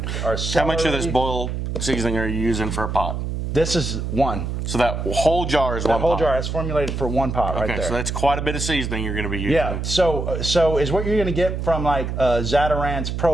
How much of this boil seasoning are you using for a pot? This is one. So that whole jar is one pot? That whole jar is formulated for one pot right there. Okay, so that's quite a bit of seasoning you're going to be using. Yeah, so is what you're going to get from like Zatarain's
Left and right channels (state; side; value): noise; right; hum, 3 dB below the sound